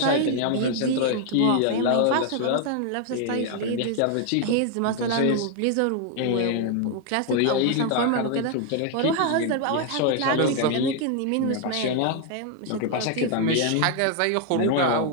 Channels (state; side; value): different; both; correlation 0.00